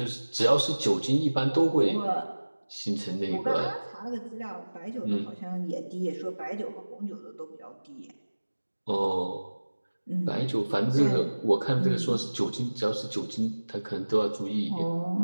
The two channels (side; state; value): both; inverted; correlation -1.00